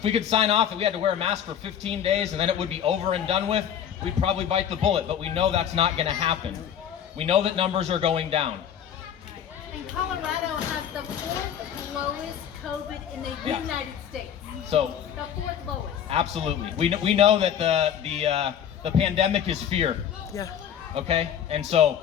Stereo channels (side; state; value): right; quieter; 9.1 dB